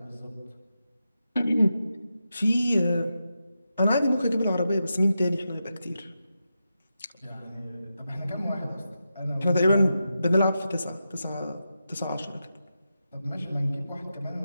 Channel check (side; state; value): both; inverted; correlation -0.89